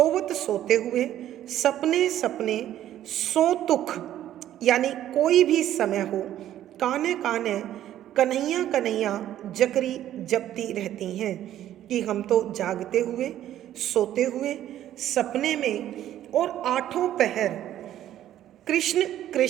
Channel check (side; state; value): left; quieter; 12.1 dB